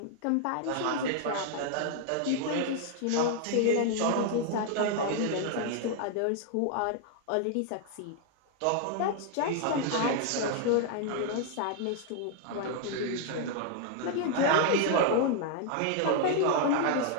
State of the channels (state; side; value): different; both; correlation 0.00